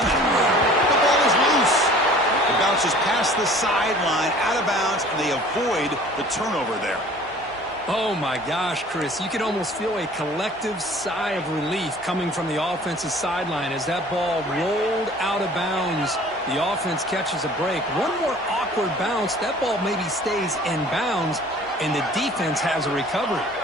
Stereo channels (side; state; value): both; normal; correlation 0.48